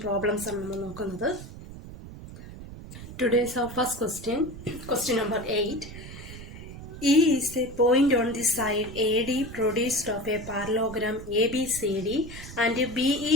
പ്രോബ്ലംസ് ആണ് നമ്മൾ നോക്കുന്നത്. Today's our first question number 8. E is a point on the side AD produced of a parallelogram ABCD and BE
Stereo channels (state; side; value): noise; right; rumble, 13 dB below the sound